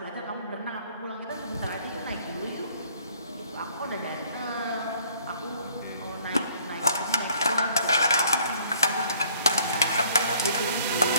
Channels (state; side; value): inverted; both; correlation -0.58